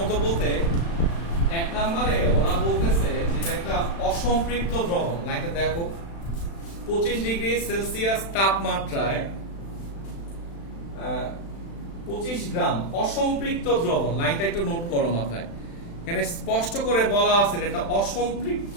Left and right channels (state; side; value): late; right; 36 ms